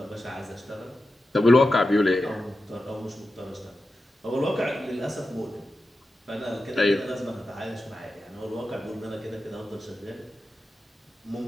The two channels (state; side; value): normal; both; correlation 0.92